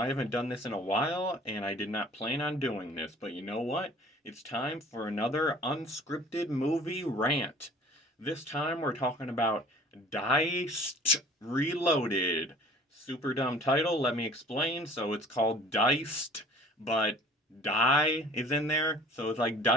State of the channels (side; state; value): both; normal; correlation 0.48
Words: haven't done this in a while, and I did not plan on doing this, but you know what? It's time for another unscripted movie rant. This time we're talking about Diced Reloaded. Super dumb title, let me explain. So it's called Diced, but die is in there, so it's like